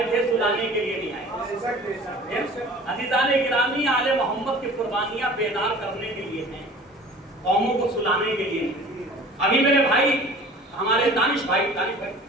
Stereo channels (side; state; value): both; normal; correlation 0.45